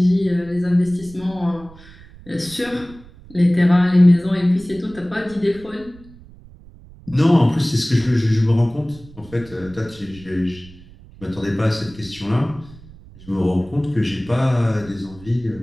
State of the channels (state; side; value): noise; right; rumble, 21 dB below the sound